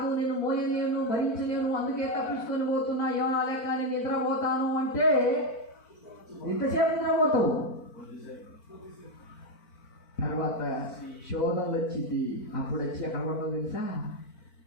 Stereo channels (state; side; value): late; right; 4.5 ms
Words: నేను మోయలేను, భరించలేను, అందుకే తప్పించుకొని పోతున్నా, ఏమనాలే కానీ నిద్రపోతాను అంటే ఎంతసేపు నిద్రపోతావు? తర్వాత శోధనలు వచ్చింది. అప్పుడు వచ్చి ఎక్కడ పడతావు తెలుసా?